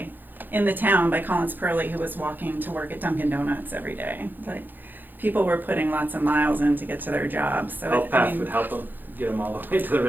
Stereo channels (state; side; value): late; left; 0.089 ms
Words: in the town by Collins Purley who was walking to work at Dunkin' Donuts every day. Like, people were putting lots of miles in to get to their jobs. So Health Path would help them get them all the way to the